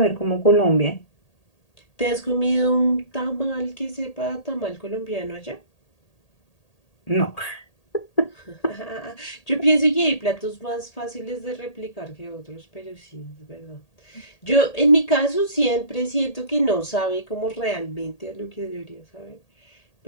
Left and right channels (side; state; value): right; late; 1.8 ms